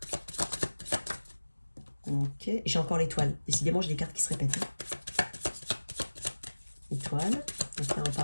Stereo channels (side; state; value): both; inverted; correlation -1.00